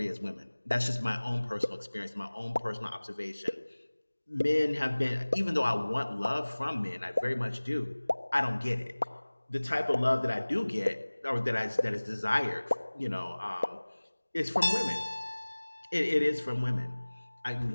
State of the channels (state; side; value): inverted; both; correlation -1.00